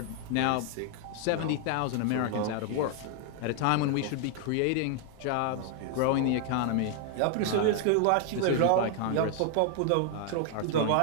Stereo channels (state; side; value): different; both; correlation 0.00